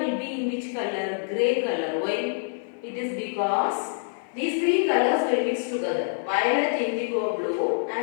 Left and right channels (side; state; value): right; silent; 56 dB below the other